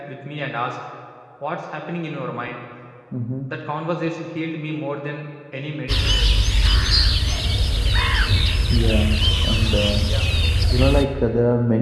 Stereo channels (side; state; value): both; identical; correlation 1.00